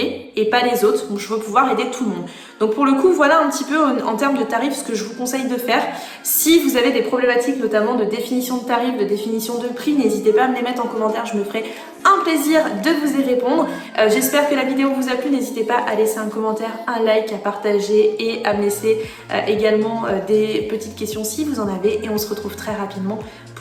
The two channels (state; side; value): identical; both; correlation 1.00